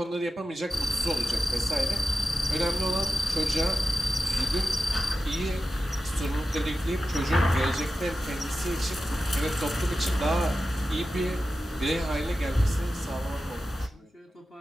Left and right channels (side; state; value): both; normal; correlation 0.92